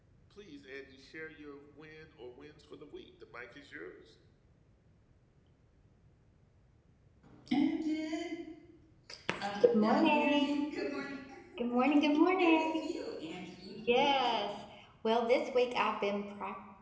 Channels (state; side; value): identical; both; correlation 1.00